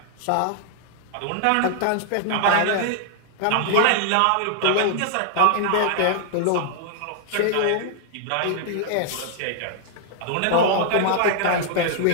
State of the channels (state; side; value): different; both; correlation 0.00